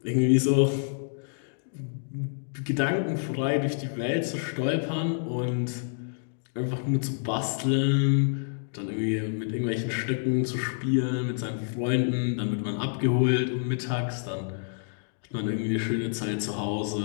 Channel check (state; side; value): silent; right; digital silence